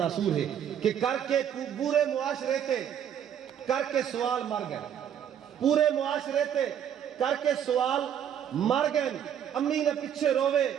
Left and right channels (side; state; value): left; quieter; 9.2 dB